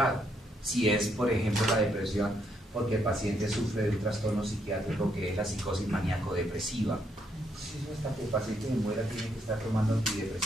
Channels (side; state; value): both; normal; correlation 0.74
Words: Si es, por ejemplo, la depresión, porque el paciente sufre de un trastorno psiquiátrico que es la psicosis maníaco-depresiva. Hasta que el paciente se muera tiene que estar tomando